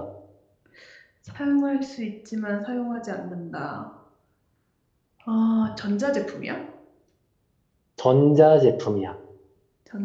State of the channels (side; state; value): both; identical; correlation 1.00